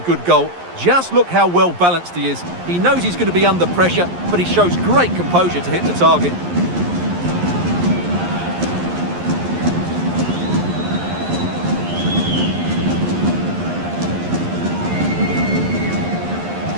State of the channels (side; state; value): left; late; 11 ms